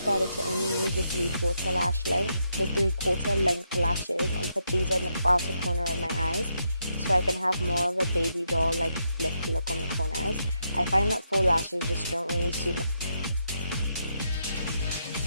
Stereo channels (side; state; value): both; inverted; correlation -0.80